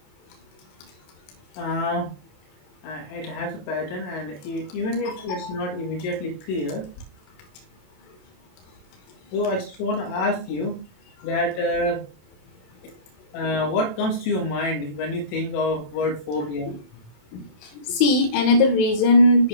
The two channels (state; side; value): late; right; 27 ms